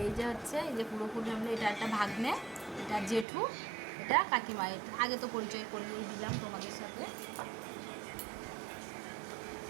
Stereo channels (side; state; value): left; drops out; at 3.2 s